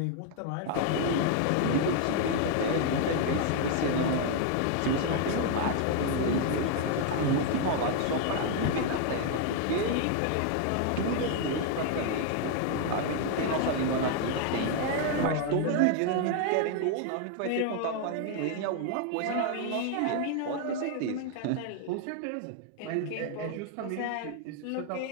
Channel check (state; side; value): different; both; correlation 0.00